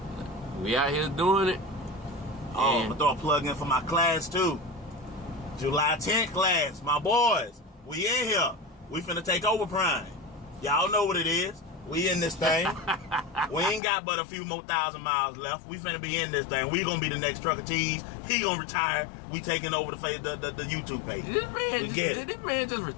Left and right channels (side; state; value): right; drops out; at 13.8 s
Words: we out here doing it. Oh, I'm gonna throw a plug in for my class too. July 10th class, my boys. We in here. We finna take over Prime. Y'all know what it is. We in this thing. We ain't got but a few more 1,000 miles left. We finna be in this thing. We gonna be the next Trucker T's. He gonna retire. We taking over the YouTube page. Did this man just